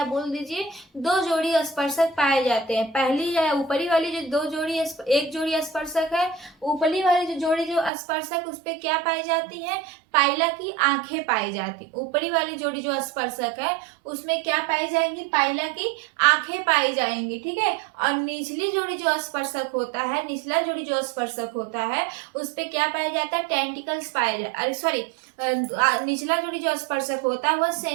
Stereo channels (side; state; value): left; drops out; at 7.9 s